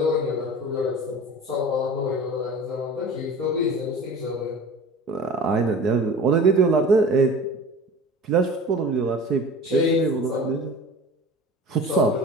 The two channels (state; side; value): normal; both; correlation 0.39